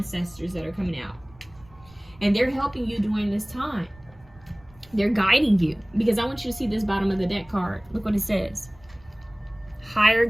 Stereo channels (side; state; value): right; noise; rumble, 25 dB below the sound